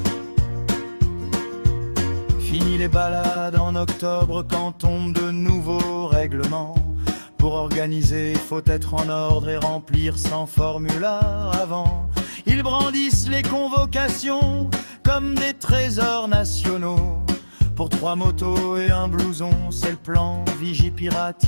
Fini les balades en octobre quand tombent de nouveaux règlements. Pour organiser, faut être en ordre et remplir 100 formulaires avant. Ils brandissent les convocations comme des trésors nationaux. Pour 3 motos et un blouson, c'est le plan Vigipirate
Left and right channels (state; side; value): inverted; both; correlation -1.00